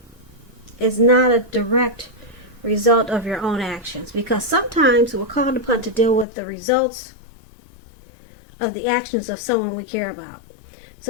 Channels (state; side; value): drops out; right; at 6.2 s